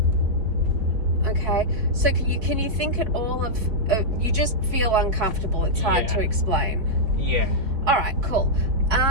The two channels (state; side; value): late; left; 4.7 ms